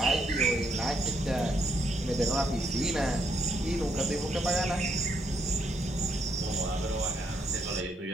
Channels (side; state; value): both; normal; correlation 0.75